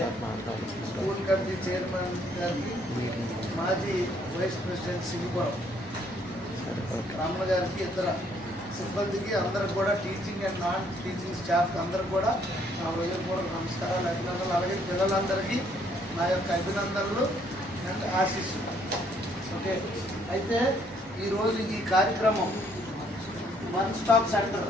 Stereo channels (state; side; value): normal; both; correlation 0.66